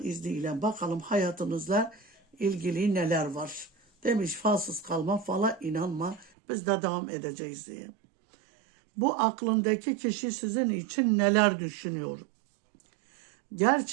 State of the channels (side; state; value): left; drops out; at 6.3 s